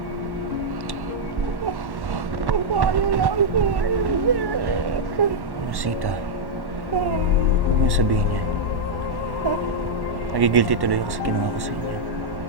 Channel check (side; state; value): left; late; 1.1 ms